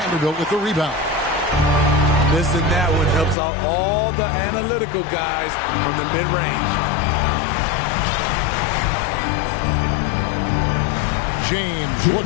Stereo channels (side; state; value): right; drops out; at 3.4 s